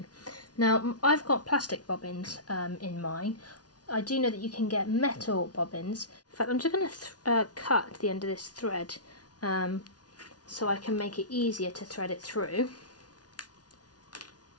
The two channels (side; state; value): right; late; 0.69 ms